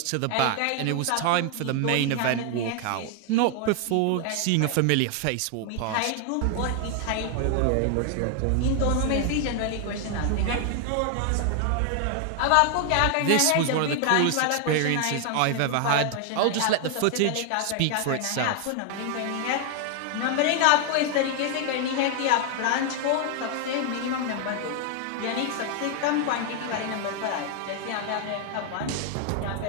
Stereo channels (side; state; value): both; different; correlation 0.00